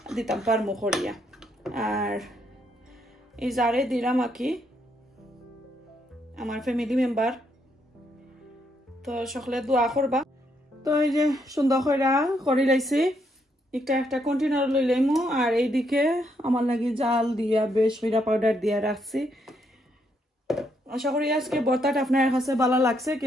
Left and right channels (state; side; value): normal; both; correlation 0.75